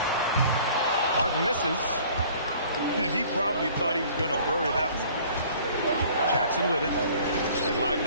Harden misses. And he probably thought he was going to bury that one. Jackson with it. And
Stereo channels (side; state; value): both; inverted; correlation -0.52